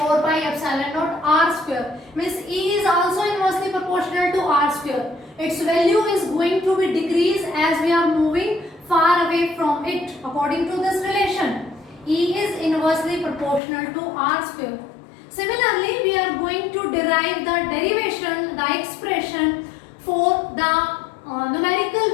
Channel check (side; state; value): right; drops out; at 13.6 s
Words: pi epsilon naught R square. Means E is also inversely proportional to R square. Its value is going to be decreased as we are moving far away from it according to this relation. E is inversely proportional to R square. Similarly, we are going to derive the derivation, the expression for the